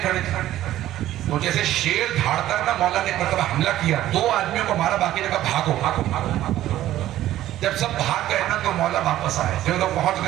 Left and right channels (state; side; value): quieter; left; 13.7 dB